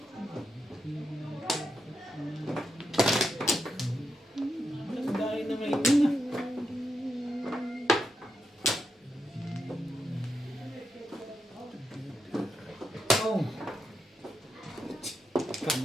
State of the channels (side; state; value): both; normal; correlation 0.84